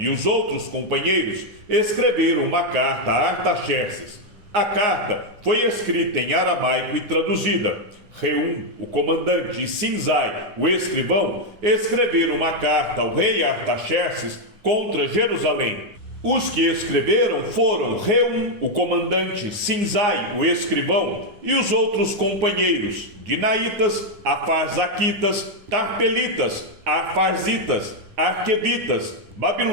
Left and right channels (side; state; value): left; late; 9.6 ms